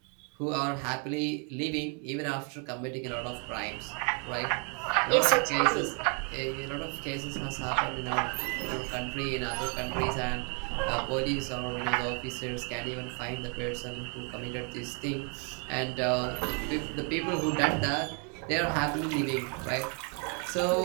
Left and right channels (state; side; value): quieter; left; 37.3 dB